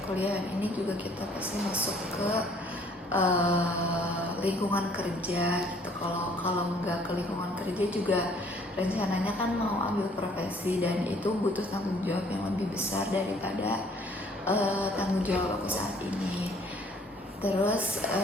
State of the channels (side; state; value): both; normal; correlation 0.59